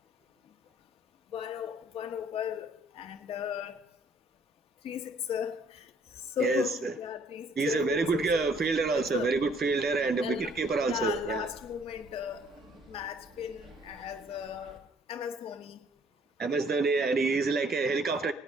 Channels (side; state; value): both; normal; correlation 0.61